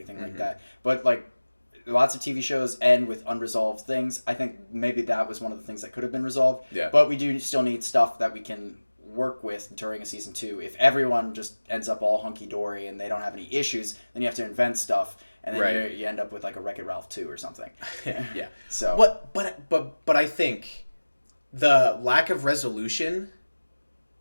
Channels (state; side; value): inverted; both; correlation -1.00